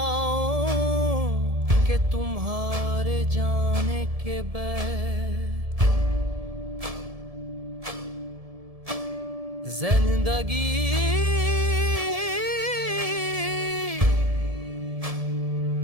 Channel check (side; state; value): left; late; 1.7 ms